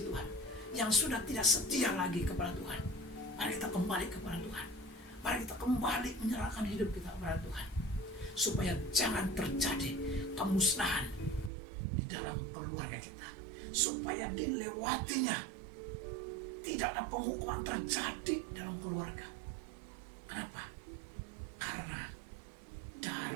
Tuhan, yang sudah tidak setia lagi kepada Tuhan, mari kita kembali kepada Tuhan. Mari kita kembali menyerahkan hidup kita kepada Tuhan, supaya jangan terjadi kemusnahan di dalam keluarga kita, supaya dilewatinya tidak ada penghukuman terjadi dalam keluarga. Kenapa? Karena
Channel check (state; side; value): drops out; left; at 11.5 s